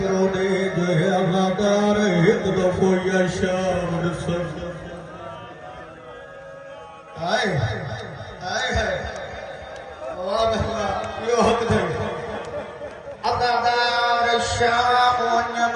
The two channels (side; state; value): both; identical; correlation 1.00